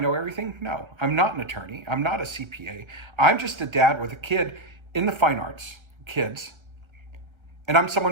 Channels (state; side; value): late; left; 1.3 ms